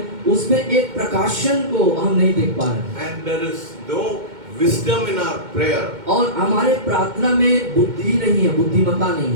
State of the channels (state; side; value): late; left; 2.1 ms